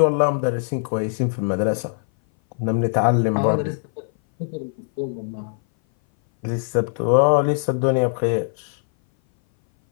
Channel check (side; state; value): right; silent; 58 dB below the other